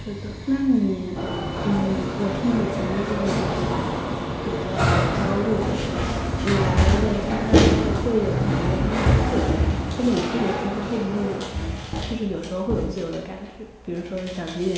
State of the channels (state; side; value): identical; both; correlation 1.00